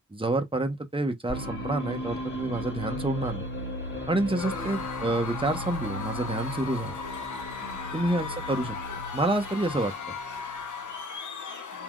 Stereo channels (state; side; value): normal; both; correlation 0.57